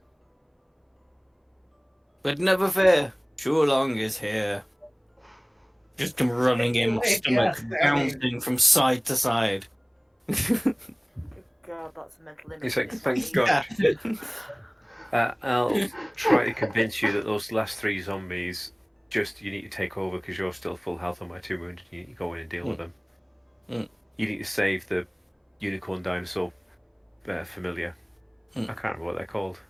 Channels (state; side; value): identical; both; correlation 1.00